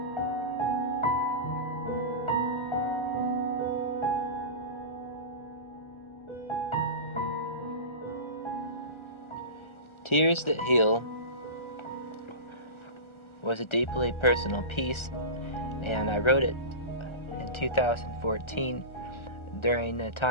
Tears That Heal was a deeply personal piece, and I wrote it in 2014 during a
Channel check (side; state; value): right; late; 1.3 ms